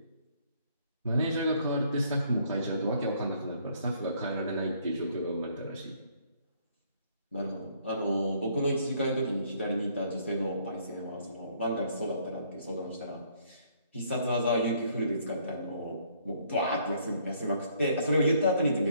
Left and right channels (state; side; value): inverted; both; correlation -0.65